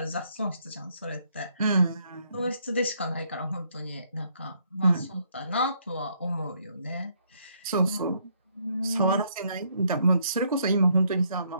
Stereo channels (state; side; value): inverted; both; correlation -0.70